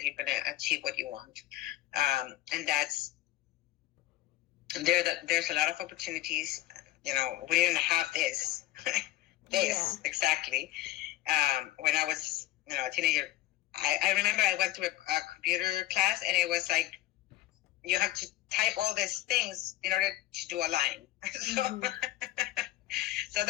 you're going to achieve what you want, and there's a lot of opportunities. We didn't have this exactly when I was a teenager. I remember I went to a computer class, and it was you have to type all these things in order to do a line. So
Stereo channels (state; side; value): quieter; right; 15.7 dB